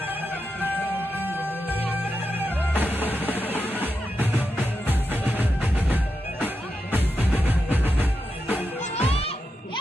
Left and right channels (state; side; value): normal; both; correlation 0.87